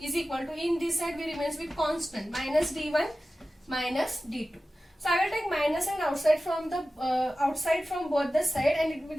is equal to, in this side we remains with constant, minus d1 minus d2. So I will take minus and outside from both the side, and it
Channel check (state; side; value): normal; both; correlation 0.95